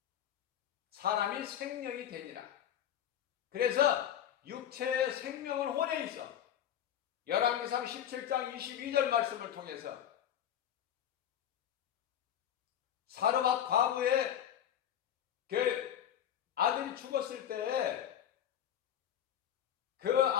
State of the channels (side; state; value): right; quieter; 10.1 dB